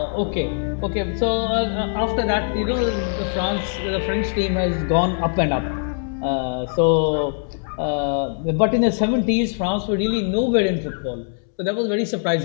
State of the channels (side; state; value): right; silent; digital silence